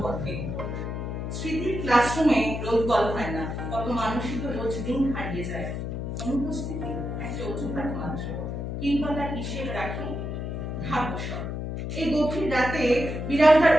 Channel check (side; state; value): left; noise; hum, 4 dB below the sound